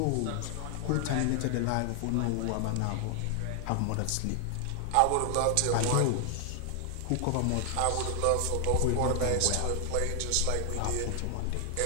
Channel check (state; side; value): different; both; correlation 0.00